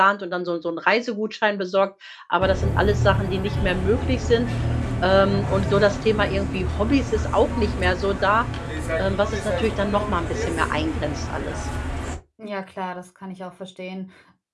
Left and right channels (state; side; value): identical; both; correlation 1.00